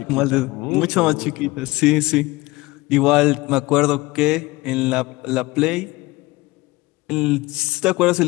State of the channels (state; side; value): quieter; right; 21.1 dB